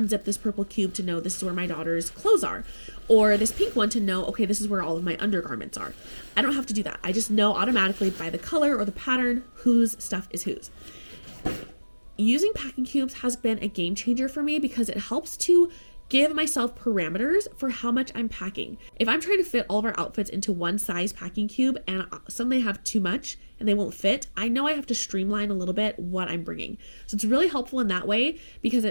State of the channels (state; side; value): inverted; both; correlation -1.00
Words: this purple cube to know this is where my daughter's clothes are. Or this pink one to know, okay, this is where all of my undergarments are. I don't have to do that. I just know automatically by the color or the pattern whose stuff is whose. Using packing cubes has been a game changer for me because it helps to give myself parameters for how much I'm packing. If I'm trying to fit all of our outfits into one size packing cube and suddenly have too much and they won't fit, I know I have to streamline a little bit what I'm bringing. So it's really helpful in that way because